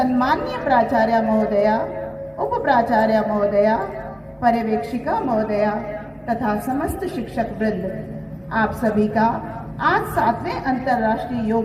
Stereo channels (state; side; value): identical; both; correlation 1.00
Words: प्राचार्य महोदया, उप प्राचार्य महोदया, पर्यवेक्षिका महोदया तथा समस्त शिक्षक वृंद, आप सभी का आज 7वें अंतर्राष्ट्रीय